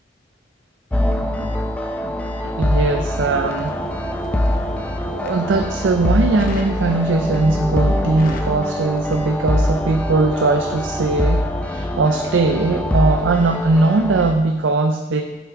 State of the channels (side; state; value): both; normal; correlation 0.58